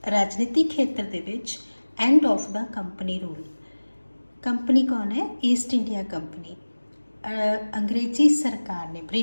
राजनीतिक खेत्र के विच end of the company rule. Company कौन है? East India company. अंग्रेजी सरकार ने,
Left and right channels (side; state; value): both; inverted; correlation -1.00